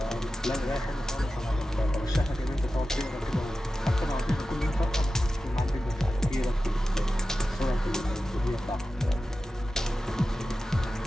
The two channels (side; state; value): both; normal; correlation 0.94